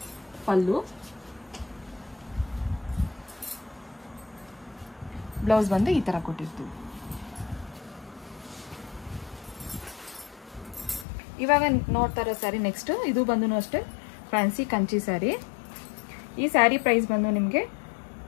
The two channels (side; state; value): right; drops out; at 11.1 s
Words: ಪಲ್ಲು. ಬ್ಲೌಸ್ ಬಂದು ಈ ಥರ ಕೊಟ್ಟಿರ್ತೀವಿ. ಇವಾಗ ನೋಡ್ತಾ ಇರೋ ಸ್ಯಾರಿ ನೆಕ್ಸ್ಟ್. ಇದು ಬಂದು ಅಷ್ಟೇ ಫ್ಯಾನ್ಸಿ ಕಂಚಿ ಸ್ಯಾರಿ. ಈ ಸ್ಯಾರಿ ಪ್ರೈಸ್ ಬಂದು ನಿಮಗೆ